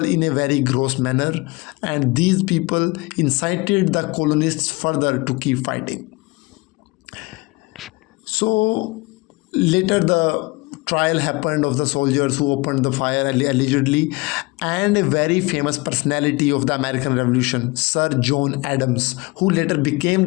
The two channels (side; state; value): right; quieter; 24.6 dB